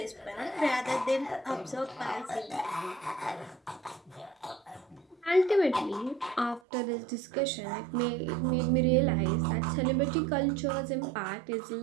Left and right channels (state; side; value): drops out; left; at 6.6 s